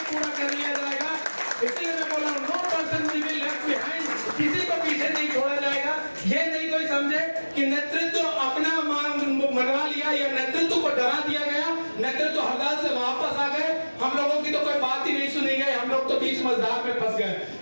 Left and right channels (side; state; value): both; inverted; correlation -1.00